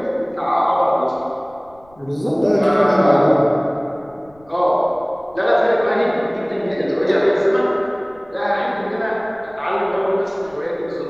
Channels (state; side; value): noise; left; rumble, 29 dB below the sound